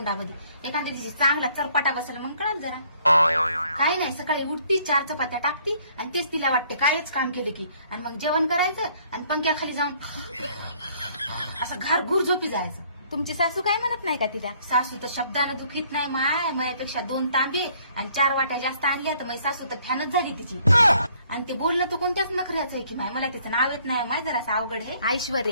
एखाद्या दिवशी चांगला चरपाटा बसला मग कळत जरा. काय नाही, सकाळी उठती 4 चपात्या टाकती आणि तेच तिला वाटते कायच काम केले की, आणि मग जेवण करायचं आणि पंख्याखाली जाऊन असं घारघूर झोपी जायचं. तुमची सासू काय म्हणत नाही का तिला? सासू तर शब्दानं दुखीत नाही. माझ्यापेक्षा 2 तांबे आणि 4 वाट्या जास्त आणल्या तर माझी सासू तर फॅनच झाली तिची. आणि ते बोलणं तर कोणत्याच नखऱ्याचं आहे की माय, मला तिचं नाव येत नाही. जरासं अवघड आहे.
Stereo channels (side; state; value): both; inverted; correlation -0.62